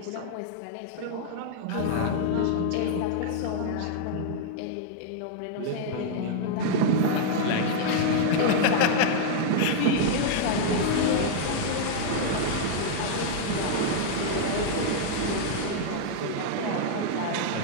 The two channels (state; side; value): different; both; correlation -0.01